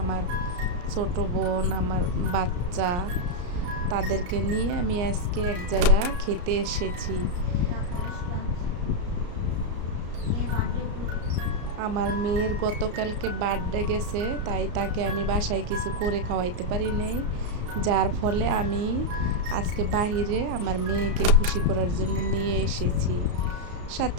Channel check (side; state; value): left; late; 34 ms